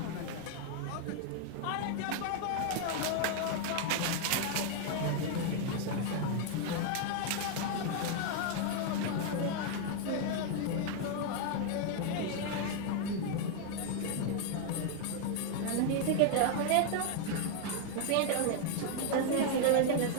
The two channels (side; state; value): both; different; correlation 0.00